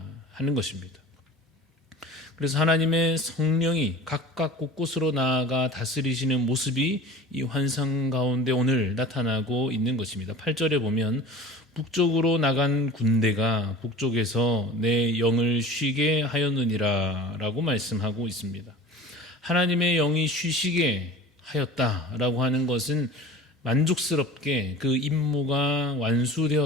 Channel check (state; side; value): normal; both; correlation 0.40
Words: 하는 것입니다. 그래서 하나님의 성령이 각각 곳곳으로 나아가 다스리시는 모습이 이 환상 가운데 오늘 나타나고 있는 것입니다. 8절에 보면 북쪽으로 나간 군대가 북쪽에서 내 영을 쉬게 하였느니라 라고 말씀하고 있습니다. 하나님의 영이 쉬시게 하였다라고 하는 것은 만족스럽게 그 임무가